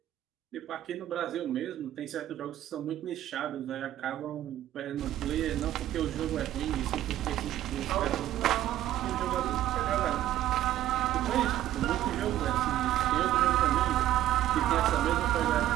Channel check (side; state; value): left; quieter; 13.0 dB